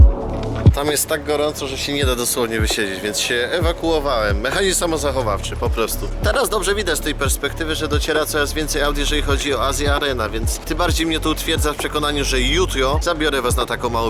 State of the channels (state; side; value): identical; both; correlation 1.00